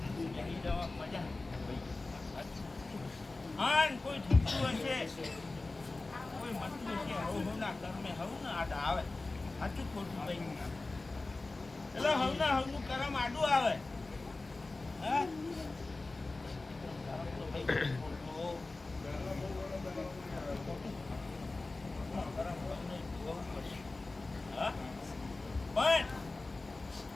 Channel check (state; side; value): quieter; right; 3.3 dB